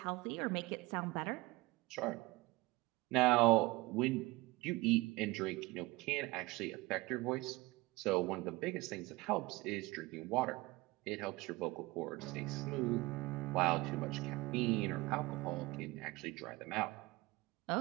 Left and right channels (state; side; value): quieter; left; 22.0 dB